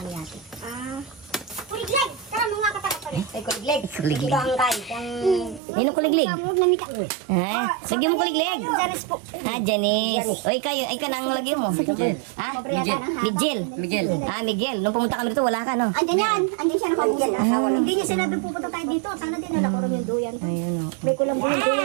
niya ate. Kuligleg! Tara mo nga katakat pa rin. Ay, kuligleg. Kuliglig. Bangkay. Nino kuliglig? Ha? Lagyan mo kuliglig. Janice po. Ah, Janice. O, ikaw nang lagyan mo. Ha? Miguel. Miguel. Ah, Miguel. Nung pumunta kami dito, wala ka, no? Andyan yan. Andyan siya nakaupo. Hindi niya sinabi pupunta tayo dito. Sana din nalako rin yung duyan. Ayun, o. May kulang yung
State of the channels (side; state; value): left; drops out; at 5.6 s